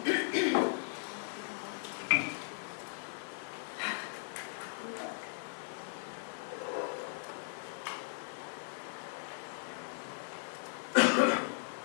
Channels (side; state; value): right; silent; digital silence